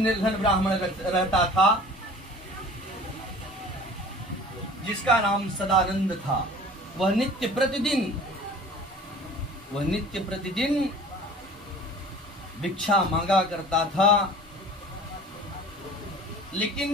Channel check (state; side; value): normal; both; correlation 0.45